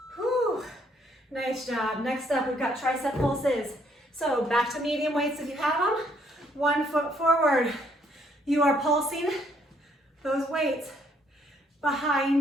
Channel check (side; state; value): both; normal; correlation 0.68